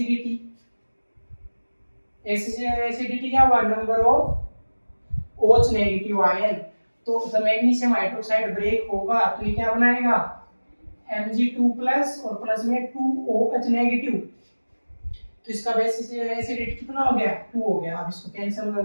एसिडिटी क्या हुआ? Number of OH negative ion. तो जब मैग्नीशियम हाइड्रोक्साइड ब्रेक होगा तो ये क्या बनाएगा? Mg2 प्लस और प्लस में 2OH नेगेटिव। तो इसका बेसिस एसिडिटी कितना हो गया? 2 हो गया। अब इसको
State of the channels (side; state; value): both; inverted; correlation -1.00